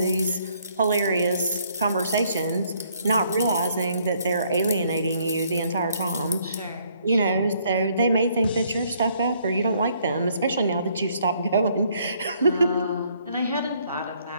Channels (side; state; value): both; inverted; correlation -0.67